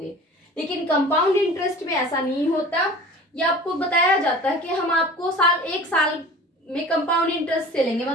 लेकिन कंपाउंड इंटरेस्ट में ऐसा नहीं होता. ये आपको बताया जाता है कि हम आपको 1 साल में कंपाउंड इंटरेस्ट से लेंगे,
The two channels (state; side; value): normal; both; correlation 0.41